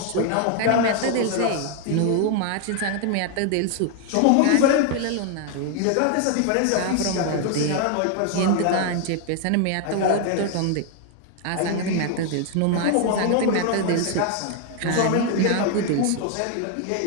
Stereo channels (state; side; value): different; both; correlation 0.00